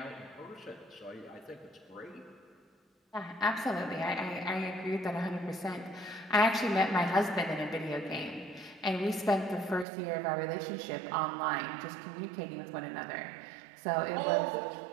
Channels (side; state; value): left; drops out; at 9.9 s